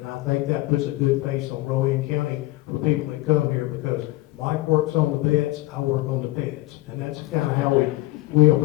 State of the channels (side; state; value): right; quieter; 19.0 dB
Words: I think that puts a good face on Rowan County for people that come here, because Mike works on the vets, I work on the pets, and that's kind of how we